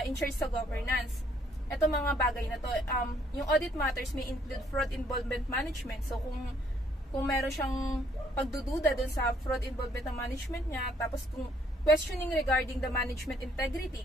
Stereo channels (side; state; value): both; normal; correlation 0.66